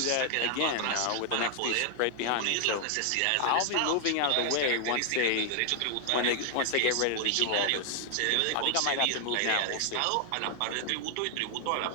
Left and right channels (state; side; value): different; both; correlation 0.00